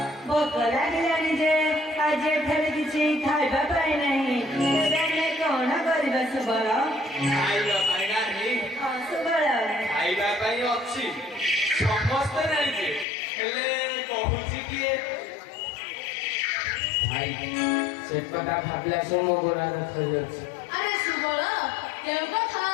ଭୋକ ଲାଗିଲାଣି ଯେ ଆଜି ଏଠାରେ କିଛି ଖାଇବା ପାଇଁ ନାହିଁ। ତେବେ ଆମେ କଣ କରିବା ସୁବଳ? ଖାଇବା ପାଇଁ ନାହିଁ। ହଁ ସୁବଳ, ଖାଇବା ପାଇଁ ଅଛି, ସମସ୍ତେ ଜାଣିଛେ, ହେଲେ କହୁଛି କିଏ? ଭାଇ ସେ କଥା ଭାବିଲା ସେ ମୋ ଗୋଡ଼ ଦେଖାଯାଉଛି। ଆରେ ସୁବଳ, କେଉଁ କଥା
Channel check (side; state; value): right; drops out; at 13.1 s